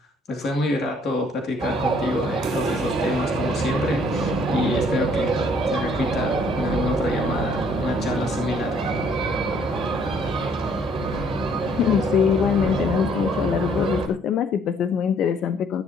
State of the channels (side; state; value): both; normal; correlation 0.63